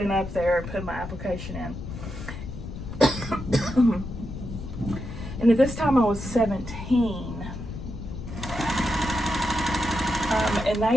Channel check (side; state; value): left; noise; rumble, 9 dB below the sound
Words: up there and put my application in. And at this time I was 17. And